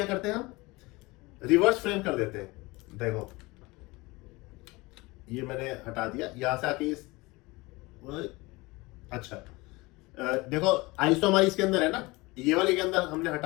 करते हैं, हम रिवर्स फ्रेम कर देते हैं। देखो ये मैंने हटा दिया, यहां से आके इस, अच्छा देखो आईज तो हमारी इसके अंदर है ना, ये वाली के अंदर हमने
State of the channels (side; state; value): right; quieter; 23.0 dB